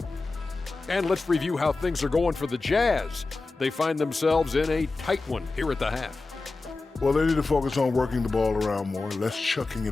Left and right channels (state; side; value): quieter; right; 3.6 dB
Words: And let's review how things are going for the Jazz. They find themselves in a tight one here at the half. Well, they need to focus on working the ball around more, less chucking